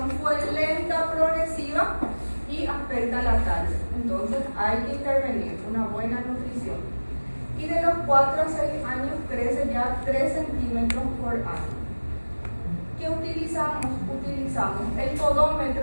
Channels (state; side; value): inverted; both; correlation -1.00